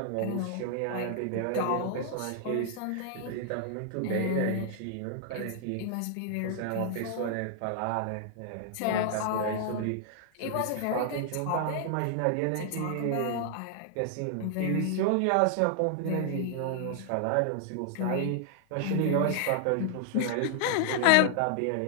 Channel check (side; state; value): both; different; correlation -0.01